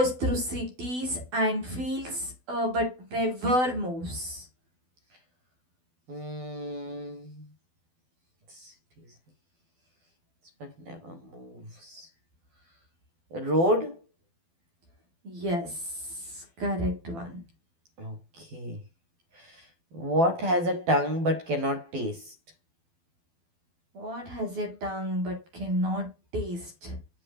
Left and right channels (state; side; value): late; left; 12 ms